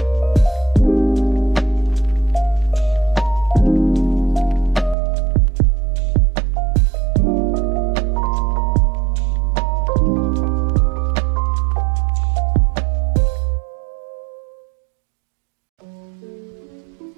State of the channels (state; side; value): drops out; left; at 5.0 s